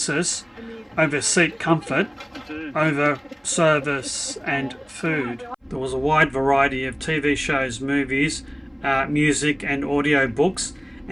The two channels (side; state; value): both; identical; correlation 1.00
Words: over seat comfort, over service and food. There was a wide variety of TV shows, movies, music and audio books,